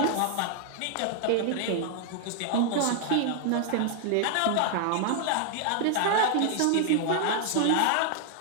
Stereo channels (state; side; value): different; both; correlation 0.00